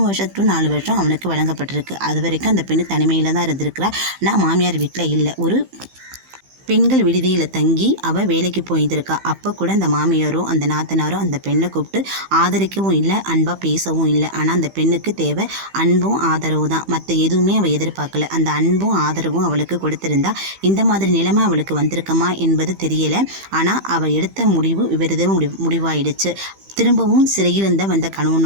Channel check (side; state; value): left; late; 15 ms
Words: வருஷம் to 4 வருஷம் அவனுக்கு வழங்கப்பட்டிருக்கு. அது வரைக்கும் அந்த பெண்ணு தனிமையில் தான் இருந்திருக்கிறா. நான் மாமியார் வீட்டில் இல்லை, ஒரு பெண்கள் விடுதியில் தங்கி அவள் வேலைக்கு போயிருக்கா. அப்போ கூட அந்த மாமியாரோ அந்த நாத்தனாரோ அந்த பெண்ணை கூப்பிட்டு ஆதரிக்கவும் இல்லை, அன்பாக பேசவும் இல்லை. ஆனால் அந்த பெண்ணுக்கு தேவை அன்பும் ஆதரவு தான், மற்ற எதுவுமே அவள் எதிர்பார்க்கல. அந்த அன்பும் ஆதரவும் அவளுக்கு கொடுத்துருந்தா இந்த மாதிரி நிலைமை அவளுக்கு வந்திருக்குமா என்பது தெரியலை. ஆனால் அவள் எடுத்த முடிவு விபரீத முடிவாயிடுச்சு. திரும்பவும் சிறையில் வந்த